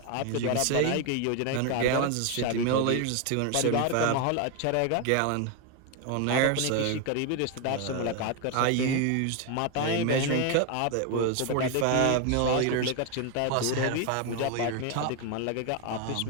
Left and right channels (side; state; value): both; different; correlation 0.01